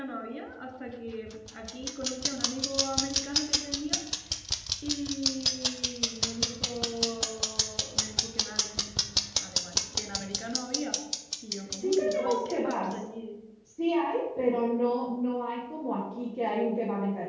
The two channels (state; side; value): identical; both; correlation 1.00